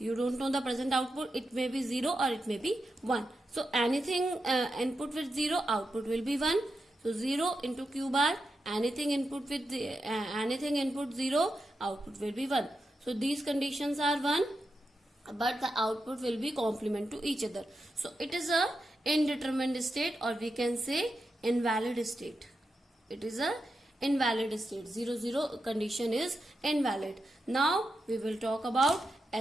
don't know the present output. It may be 0 or it may be 1. So anything input with 0, output will be 1. So 0 into Q bar, anything input with anything input 0, output will be 1. So these conditions are 1, but the output will be complement to each other. So it is a indeterminate state, or we can say invalid state. It is a invalid state. 0, 0 condition is invalid. Now we will talk about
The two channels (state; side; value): normal; both; correlation 0.87